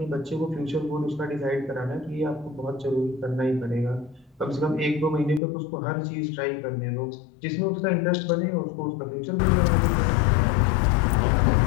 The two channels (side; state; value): right; drops out; at 5.4 s